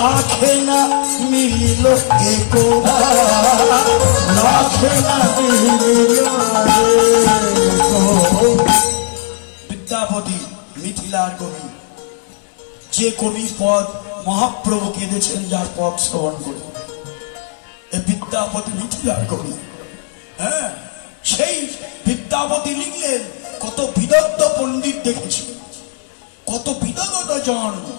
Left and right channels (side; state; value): right; silent; digital silence